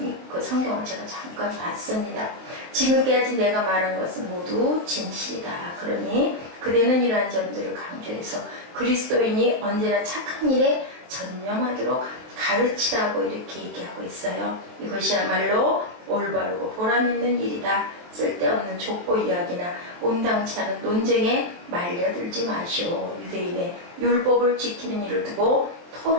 그 성경을 제가 잠깐 봤습니다. 지금까지 내가 말한 것은 모두 진실이다. 그러니 그대는 이러한 점들을 강조해서 그리스도인이 언제나 착한 일에 전념하도록 가르치라고 이렇게 얘기하고 있어요. 이것이야말로 올바르고 보람있는 일이다. 쓸데없는 족보 이야기나 온당치 않은 논쟁에 말려들지 마시오. 유대인의 율법을 지키는 일을 두고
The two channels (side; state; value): left; late; 23 ms